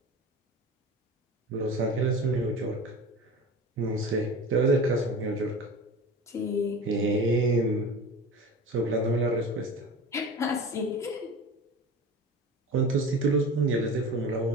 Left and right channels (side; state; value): both; normal; correlation 0.34